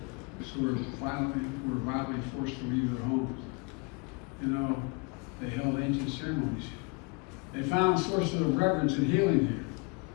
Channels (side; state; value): right; quieter; 30.7 dB